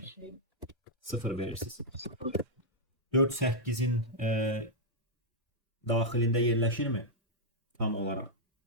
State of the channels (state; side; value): normal; both; correlation -0.06